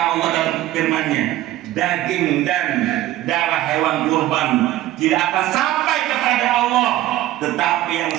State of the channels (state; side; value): quieter; left; 14.9 dB